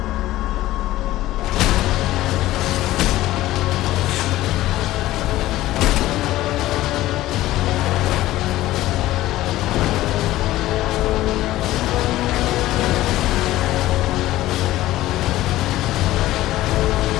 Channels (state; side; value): quieter; right; 15.9 dB